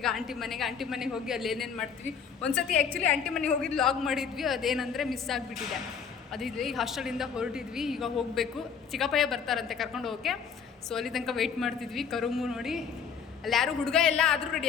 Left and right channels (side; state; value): right; quieter; 6.7 dB